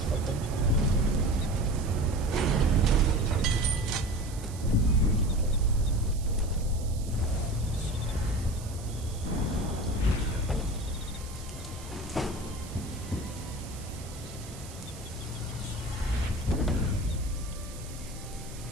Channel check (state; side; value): noise; right; hiss, 17 dB below the sound